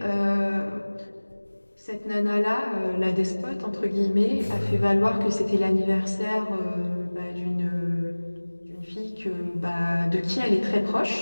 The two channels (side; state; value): both; inverted; correlation -1.00